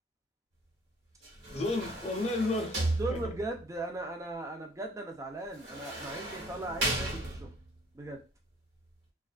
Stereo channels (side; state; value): both; normal; correlation 0.55